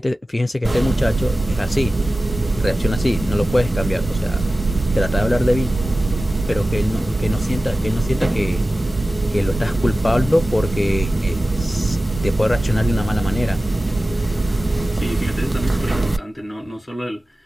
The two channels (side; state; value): both; normal; correlation 0.95